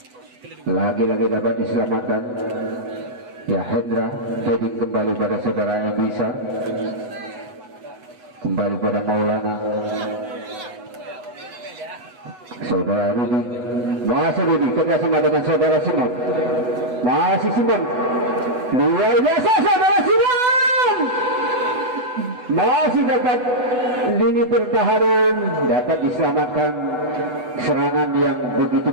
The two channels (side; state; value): left; late; 8.0 ms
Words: lagi-lagi dapat diselamatkan. Ya, Hendra heading kembali pada saudara Emisa, kembali pada Maulana, saudara Rudi, masih Rudi kerjasama dengan saudara Simon, masih Simon, luar biasa saudara Simon, masih dapat lini pertahanan, dapat diselamatkan serangan yang begitu